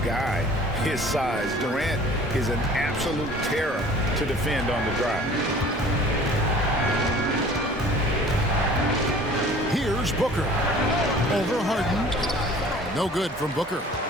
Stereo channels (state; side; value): normal; both; correlation 0.48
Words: guy his size. Durant is an absolute terror to defend on the drive. Here's Booker. Over Harden. No good from Booker.